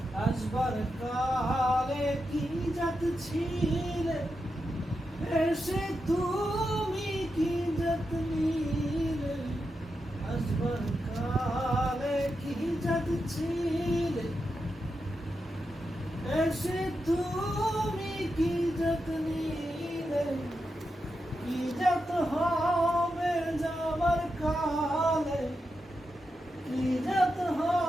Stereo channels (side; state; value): both; normal; correlation 0.87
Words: আসবার কালে কি যত ছিলে এসে তুমি কি যত নিলে আসবার কালে কি যত ছিলে এসে তুমি কি যত নিলে কি যত হবে যাবার কালে কি যত